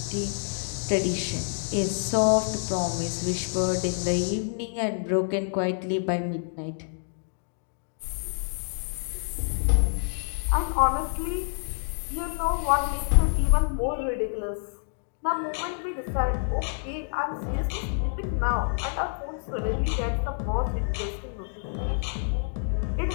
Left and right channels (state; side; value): silent; right; digital silence